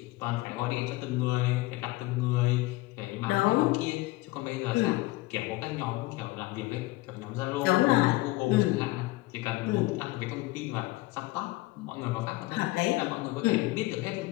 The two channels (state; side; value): quieter; right; 20.5 dB